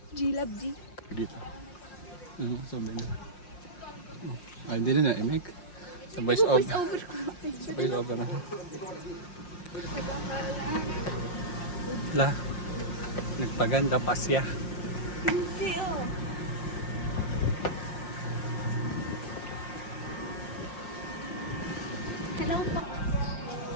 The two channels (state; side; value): late; right; 5.6 ms